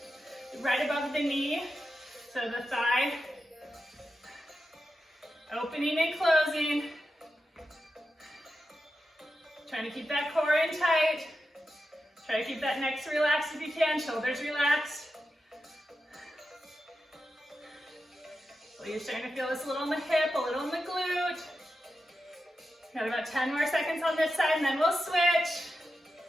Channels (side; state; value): both; normal; correlation 0.90